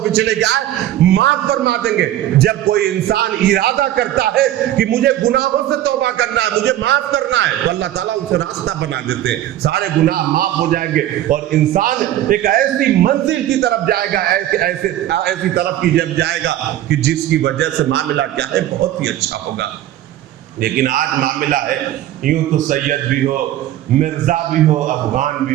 پچھلے جائے معاف فرما دیں گے۔ جب کوئی انسان ارادہ کرتا ہے کہ مجھے گناہوں سے توبہ کرنا ہے، مجھے معاف کرنا ہے، تو اللہ تعالیٰ اسے راستہ بنا دیتے ہیں، سارے گناہ معاف ہو جائیں گے، اور انسان ایک ایسی منزل کی طرف جائے گا، ایسی طرف کی جب جائے گا کہ جس کی وجہ سے معاملہ کیا ہے بہت ہی اچھا ہوگا۔ لیکن آج معاملہ ہے یوں تو سید بھی ہو، مرزا بھی ہو، افغان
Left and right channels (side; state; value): left; quieter; 13.0 dB